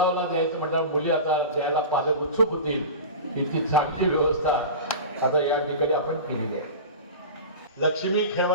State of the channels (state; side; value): inverted; both; correlation -0.30